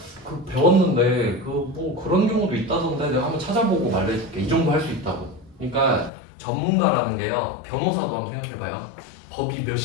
배웠는데 뭐 그런 경우도 있다던데 내가 한번 찾아보고 말해줄게. 이 정도 할 수 있다고. 그러니까 전문가라는 게요. 변호사도 한번 생각해봐요. 법이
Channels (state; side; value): drops out; right; at 6.1 s